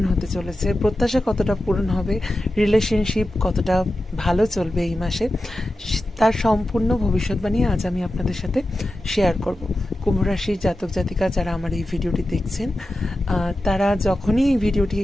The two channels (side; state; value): both; normal; correlation 0.92